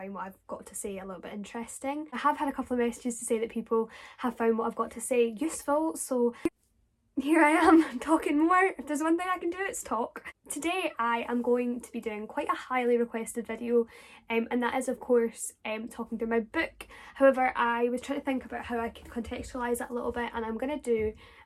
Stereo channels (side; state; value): both; identical; correlation 1.00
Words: what I've got to say a little bit interesting. I have had a couple of messages to say that people have found what I've got to say useful, so here I am talking more. If there's one thing I can do, it's talk. Today I am going to be doing quite a highly requested video, and that is of course talking through my book. However, I was trying to think about how I could contextualise that a little bit, and I'm going to do